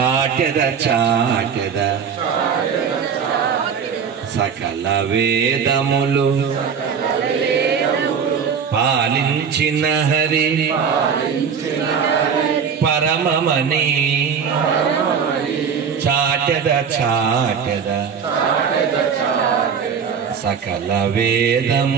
చాటెద సకల వేదములు పాలించిన హరి పరమమని చాటెద చాటెద సకల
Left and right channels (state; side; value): quieter; left; 6.8 dB